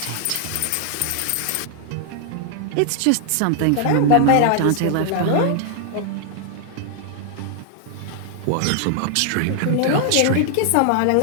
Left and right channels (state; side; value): different; both; correlation 0.00